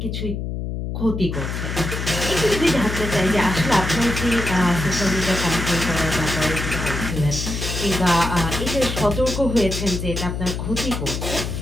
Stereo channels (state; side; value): noise; left; hum, 4 dB below the sound